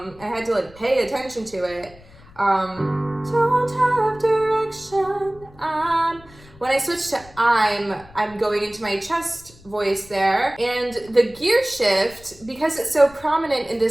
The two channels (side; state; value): left; noise; rumble, 23 dB below the sound